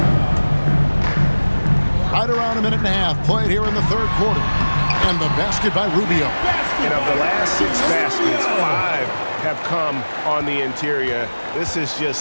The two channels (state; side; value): inverted; both; correlation -1.00